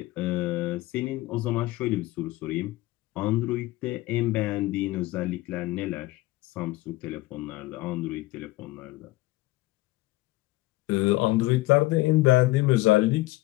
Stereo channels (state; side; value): quieter; right; 19.2 dB